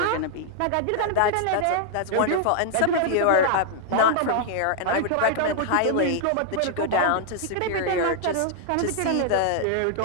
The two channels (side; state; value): both; different; correlation 0.00